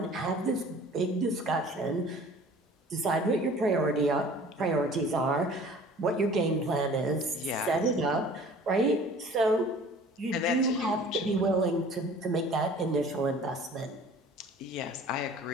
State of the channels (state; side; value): normal; both; correlation 0.47